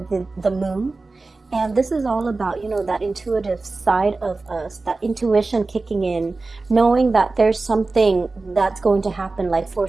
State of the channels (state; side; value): quieter; left; 3.6 dB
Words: the moon, and this is all about, you know, that intuitive side of us, that intuition kicking in, knowing that there's something that's going to happen, like